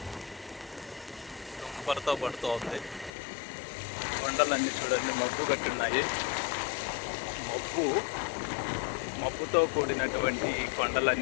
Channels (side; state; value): right; drops out; at 3.1 s